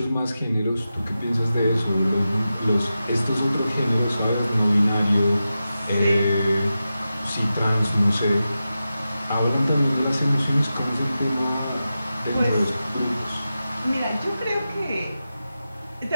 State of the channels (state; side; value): inverted; both; correlation -0.92